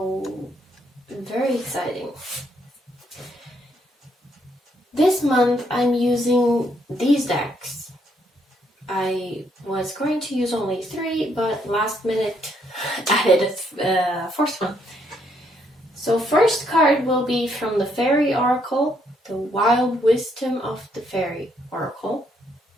very exciting. This month I'm using these decks. I was going to use only 3, but last minute added a fourth one. So first card will be from the Faery Oracle, the Wild Wisdom of the Faery Oracle.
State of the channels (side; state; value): both; normal; correlation 0.72